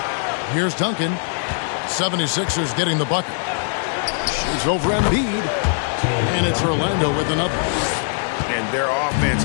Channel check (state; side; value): silent; right; 65 dB below the other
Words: Here's Duncan. 76ers getting the bucket. Shoots over Embiid. And it's Orlando with another. And their